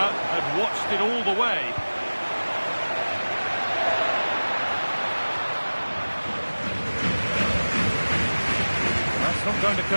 had watched it all the way. Not going to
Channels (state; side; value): inverted; both; correlation -1.00